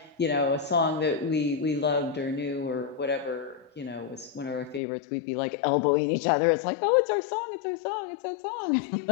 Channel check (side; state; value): right; drops out; at 4.8 s